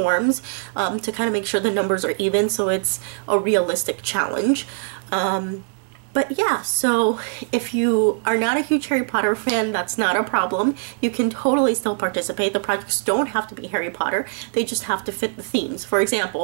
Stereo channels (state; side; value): silent; left; digital silence